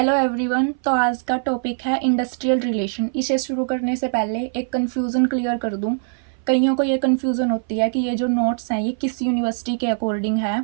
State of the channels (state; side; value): silent; left; 58 dB below the other